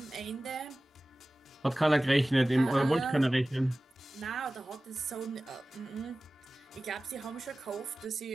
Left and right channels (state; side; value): normal; both; correlation 0.97